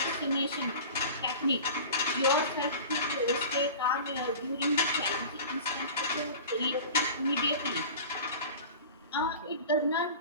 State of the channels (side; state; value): both; inverted; correlation -0.37